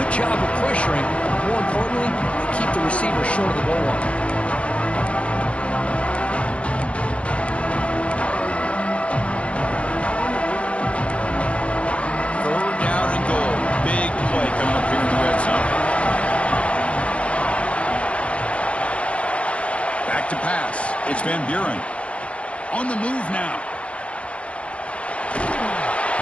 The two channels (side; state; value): right; late; 0.062 ms